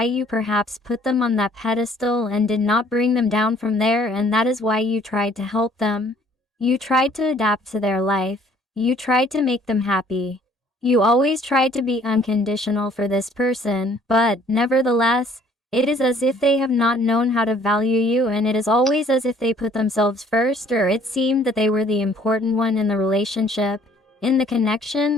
you perhaps put them on that pedestal and did not bring them down from there, and that is why you tried to help them. You tried to adapt to their life. You tried to make them happy. You always tried to be unconditional for this person, but, nevertheless, it is as if they have not known how to value you, and it is always as if they put themselves first, or it seemed that they were the important one in the relationship, in the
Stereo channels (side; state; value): both; normal; correlation 0.58